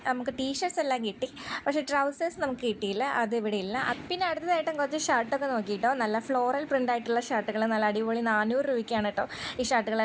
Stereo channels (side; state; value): both; identical; correlation 1.00